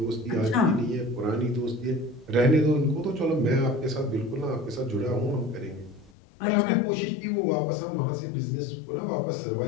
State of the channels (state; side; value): drops out; right; at 6.1 s